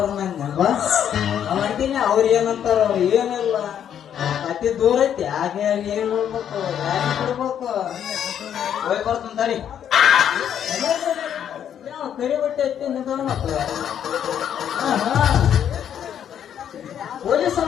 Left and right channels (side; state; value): right; quieter; 9.3 dB